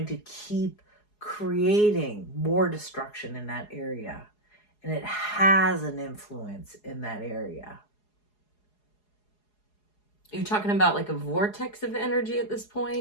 to keep creating more destruction in that area. And it has an influence in that area. You're talking about like a vortex of energy at this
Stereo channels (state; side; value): late; right; 4.8 ms